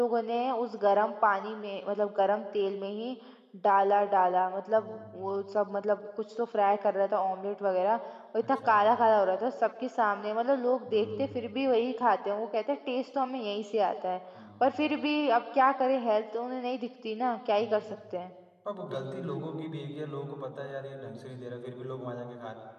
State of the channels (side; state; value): both; identical; correlation 1.00